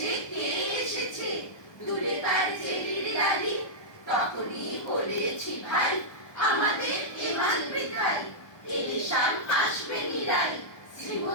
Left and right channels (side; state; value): right; late; 1.2 ms